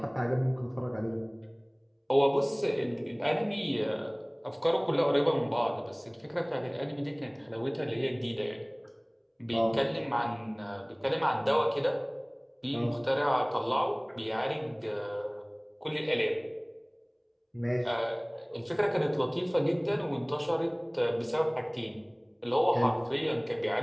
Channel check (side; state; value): both; identical; correlation 1.00